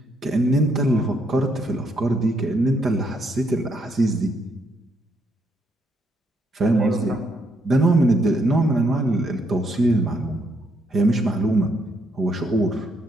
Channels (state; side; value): normal; both; correlation 0.74